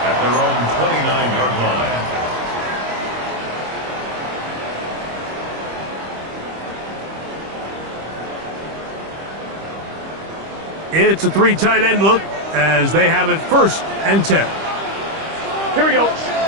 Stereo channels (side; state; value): left; late; 25 ms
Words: At their own 29-yard line. It's a 3 tight end look as they have it 1st and 10. Here we go.